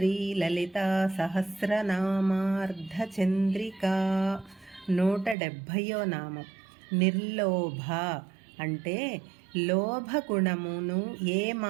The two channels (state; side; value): drops out; left; at 5.4 s